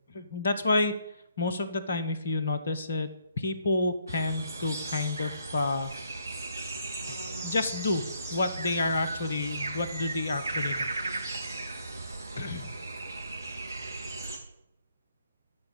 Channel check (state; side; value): inverted; both; correlation -0.71